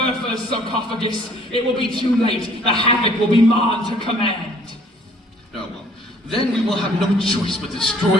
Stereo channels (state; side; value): normal; both; correlation 0.58